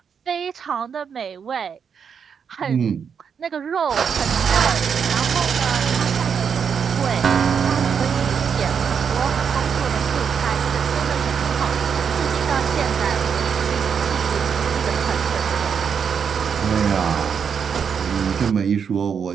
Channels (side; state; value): left; quieter; 6.9 dB